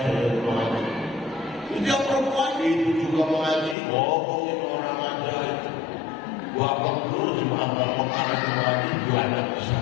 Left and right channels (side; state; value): right; drops out; at 3.8 s